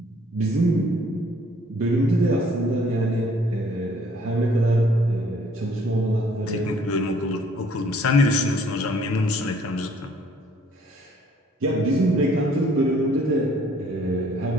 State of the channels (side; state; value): both; normal; correlation 0.60